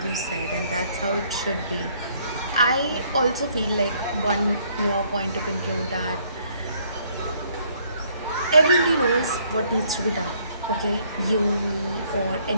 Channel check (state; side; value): inverted; both; correlation -0.65